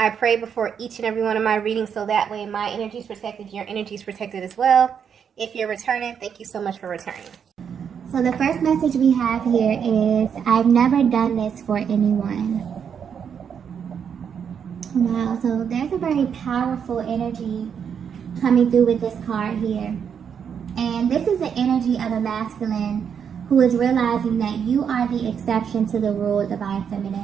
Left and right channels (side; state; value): left; quieter; 7.5 dB